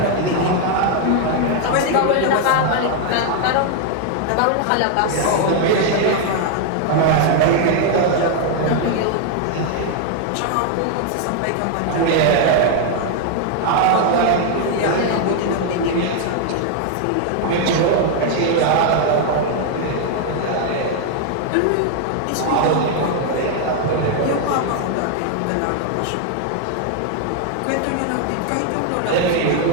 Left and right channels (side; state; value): both; different; correlation 0.00